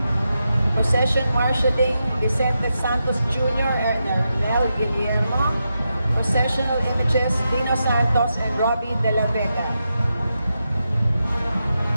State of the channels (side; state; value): both; inverted; correlation -0.87